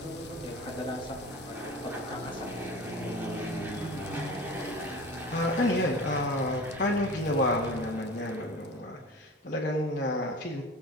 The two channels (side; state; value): both; normal; correlation 0.36